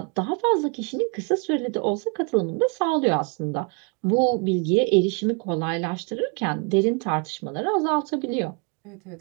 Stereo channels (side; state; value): left; quieter; 33.9 dB